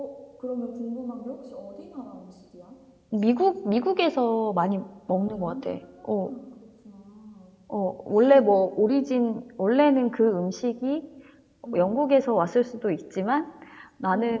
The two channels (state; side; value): identical; both; correlation 1.00